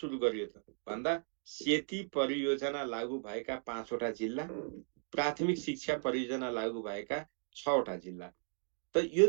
गरियो त भन्दा सेती परियोजना लागू भएका 5वटा जिल्ला, प्राथमिक शिक्षा परियोजना लागू भएका 6वटा जिल्ला। त यो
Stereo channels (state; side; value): silent; left; 54 dB below the other